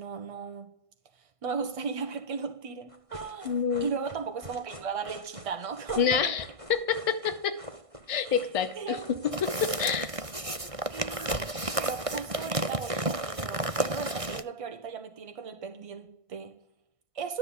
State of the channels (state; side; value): late; left; 1.6 ms